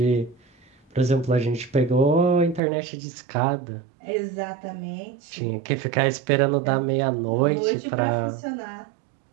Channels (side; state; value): left; drops out; at 2.6 s